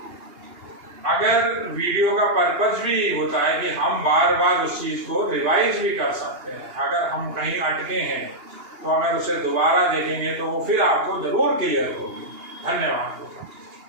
अगर वीडियो का पर्पज भी होता है कि हम बार बार उस चीज को रिवाइज भी कर सकते हैं, अगर हम कहीं अटके हैं तो अगर उसे दोबारा देखेंगे तो वो फिर आपको जरूर क्लियर होगी। धन्यवाद।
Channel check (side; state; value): left; late; 2.8 ms